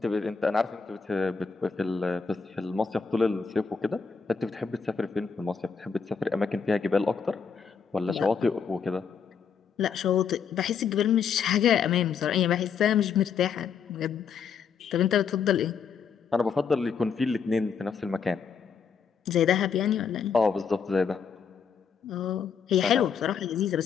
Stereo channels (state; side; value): quieter; right; 6.3 dB